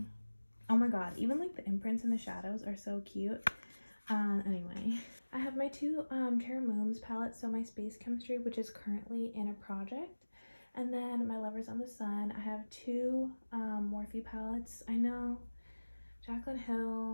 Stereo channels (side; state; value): both; inverted; correlation -1.00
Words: Oh my god, even like the imprints and the shadows are so cute. Anyway, I have my 2 Terra Mooms palettes, so my Space Chemistry, which is currently in a project, and then my Lovers on the Sun. I have 2 Morphe palettes. I know Jaclyn